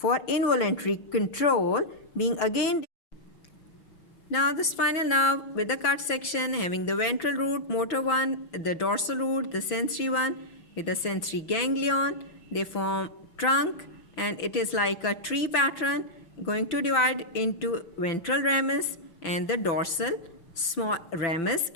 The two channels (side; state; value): right; late; 6.0 ms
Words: involuntary control, being again. Now the spinal nerve with the cut section having the ventral root, motor one, the dorsal root, the sensory one with the sensory ganglion. They form trunk and it is like a tree pattern going to divide into ventral ramus and the dorsal small ramus,